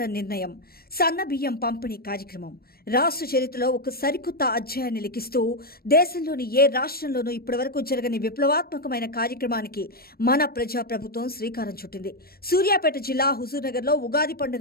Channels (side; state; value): right; late; 0.44 ms